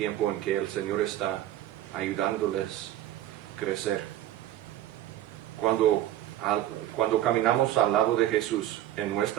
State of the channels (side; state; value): left; quieter; 13.1 dB